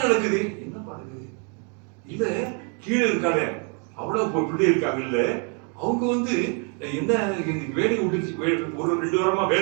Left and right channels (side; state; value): left; quieter; 38.1 dB